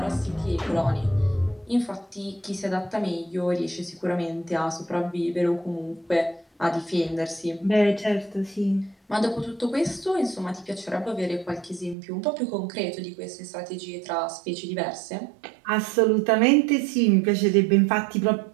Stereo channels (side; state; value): left; drops out; at 12.0 s